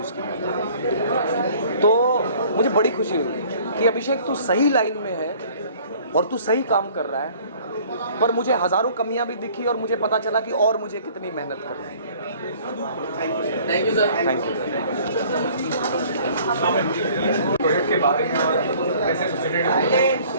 उसकी, तो मुझे बड़ी खुशी हुई कि अभिषेक तू सही लाइन में है और तू सही काम कर रहा है। पर मुझे हज़ारों कमियां भी दिखी और मुझे पता चला कि और मुझे कितनी मेहनत करनी है। Thank you sir. Thank you. Project के बारे में और कैसे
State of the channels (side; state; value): both; inverted; correlation -0.54